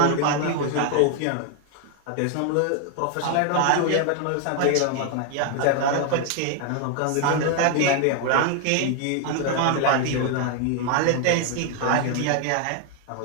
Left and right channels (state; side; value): different; both; correlation 0.00